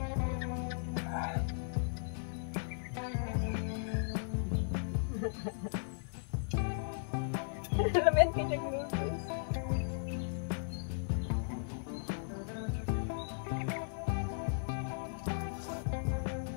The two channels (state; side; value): silent; right; 53 dB below the other